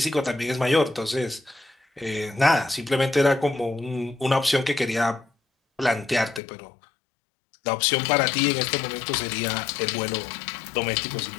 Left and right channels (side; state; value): right; drops out; at 6.4 s